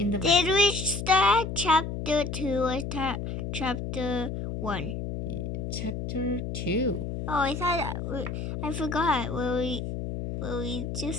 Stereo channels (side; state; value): left; noise; hum, 5 dB below the sound